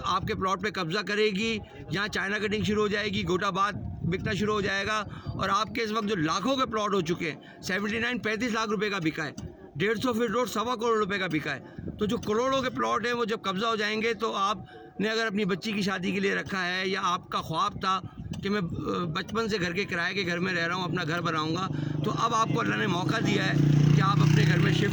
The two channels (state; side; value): identical; both; correlation 1.00